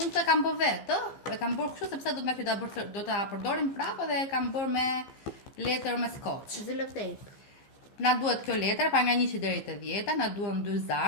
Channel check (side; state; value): right; late; 15 ms